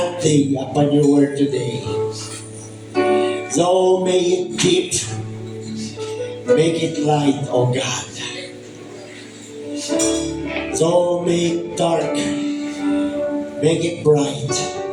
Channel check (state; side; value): identical; both; correlation 1.00